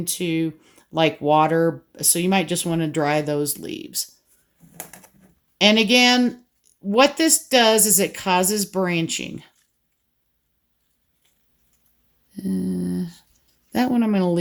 like water, so you might just want to dry those leaves. And again, what this does is it causes branching. That one I'm going to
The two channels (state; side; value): identical; both; correlation 1.00